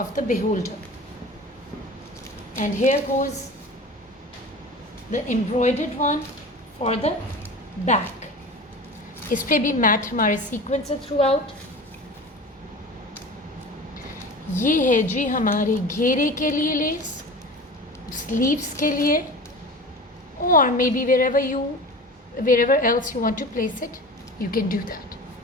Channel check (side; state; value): both; normal; correlation 0.35